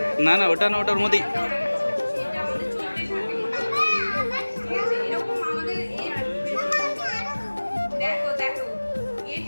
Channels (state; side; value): inverted; both; correlation -1.00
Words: না না, ওটা না, ওটার মধ্যে এরকম আমাদের দেখো দেখো